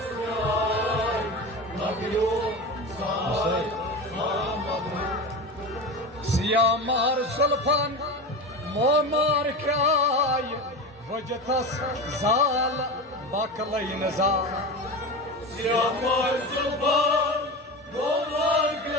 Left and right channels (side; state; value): both; normal; correlation 0.25